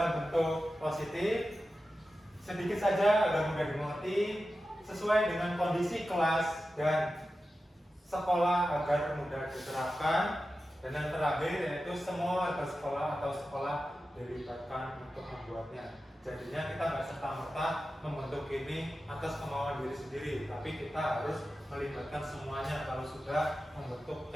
bentuk positif, sedikit saja agar mudah dimengerti, sesuai dengan kondisi kelas dan sekolah agar mudah diterapkan. Dan yang terakhir yaitu semua warga sekolah atau sekolah dilibatkan untuk membuatnya. Jadinya kita nggak serta-merta membentuk ini atas kemauan diri sendiri, tapi kita harus melibatkan semuanya kalau sudah membentuk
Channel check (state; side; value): normal; both; correlation 0.93